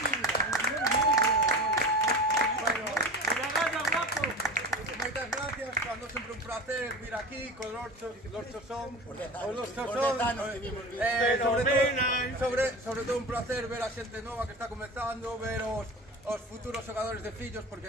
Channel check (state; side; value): normal; both; correlation 0.31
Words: Moitas gracias, cando sempre un placer vir aquí con Lorchos son Por 10 anos que vimos sobre todo un placer ver a xente nova que está comezando, ver os futuros xogadores de fillos, porque